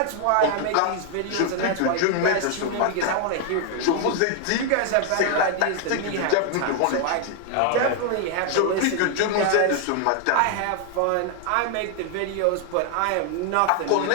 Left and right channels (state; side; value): different; both; correlation 0.00